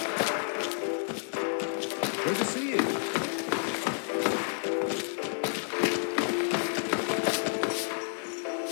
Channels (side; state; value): right; silent; 58 dB below the other